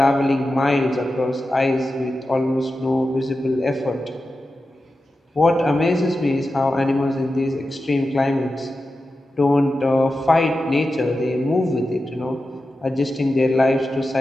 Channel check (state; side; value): normal; both; correlation 0.92